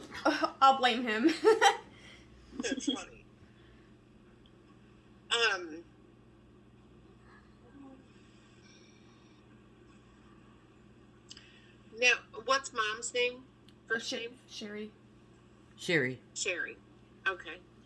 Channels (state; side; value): identical; both; correlation 1.00